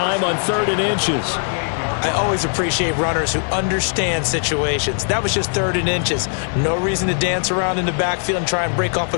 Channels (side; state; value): right; silent; 62 dB below the other